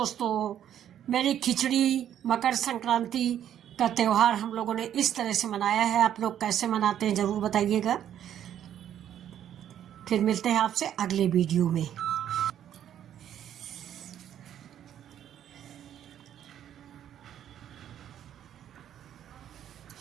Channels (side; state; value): left; quieter; 10.4 dB